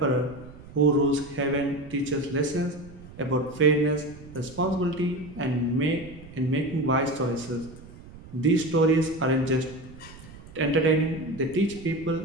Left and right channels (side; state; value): right; noise; rumble, 18 dB below the sound